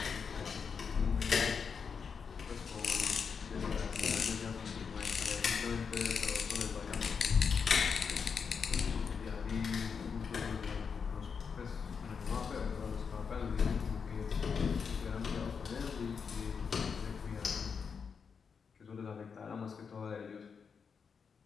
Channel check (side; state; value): right; quieter; 6.0 dB